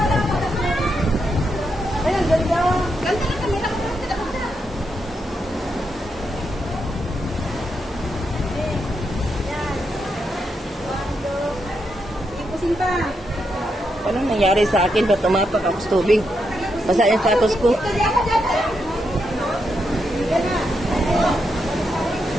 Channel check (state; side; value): normal; both; correlation 0.82